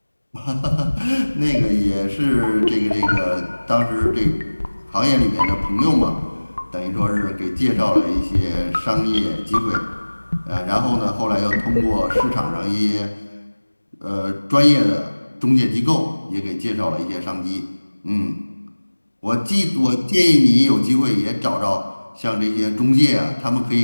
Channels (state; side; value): inverted; both; correlation -1.00